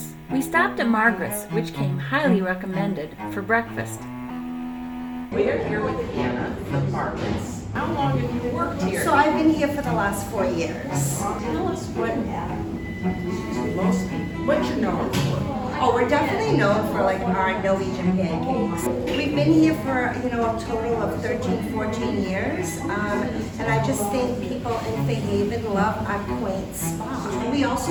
We stopped at Margaret's, which came highly recommended, for breakfast. We're here with Anna from Margaret's. How long have you worked here? So I've been here for the last 4 years. Tell us what you're known for. Oh, we're definitely known for like our Norwegian pancakes. We've been here for, a total of 13, 14 years. And I just think people in Fairhaven love our quaint spot. We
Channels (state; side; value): identical; both; correlation 1.00